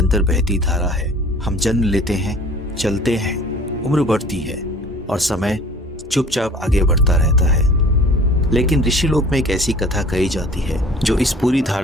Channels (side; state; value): both; normal; correlation 0.48